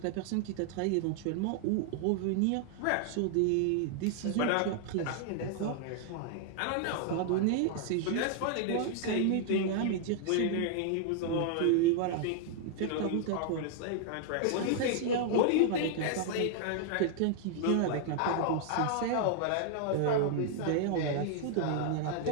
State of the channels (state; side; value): different; both; correlation 0.00